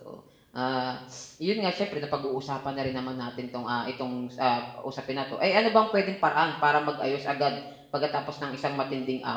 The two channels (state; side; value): identical; both; correlation 1.00